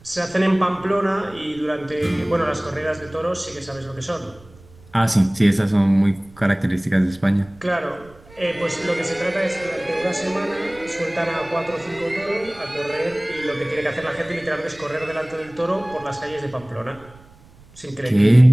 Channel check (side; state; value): right; noise; rumble, 24 dB below the sound